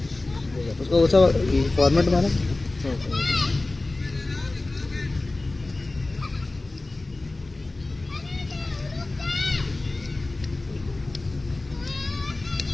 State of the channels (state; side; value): quieter; right; 3.1 dB